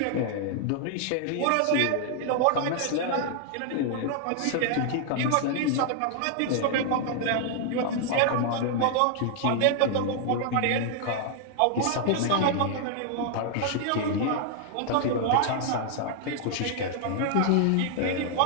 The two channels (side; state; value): both; different; correlation 0.00